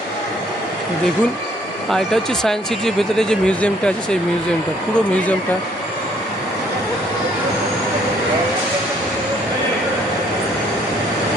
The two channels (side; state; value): both; normal; correlation 0.64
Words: দেখুন। আর এটা হচ্ছে সায়েন্স সিটির ভেতরে যে মিউজিয়ামটা আছে, সেই মিউজিয়ামটা, পুরো মিউজিয়ামটা।